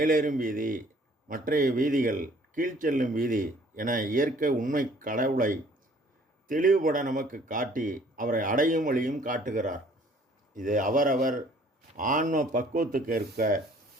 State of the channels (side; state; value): both; normal; correlation 0.57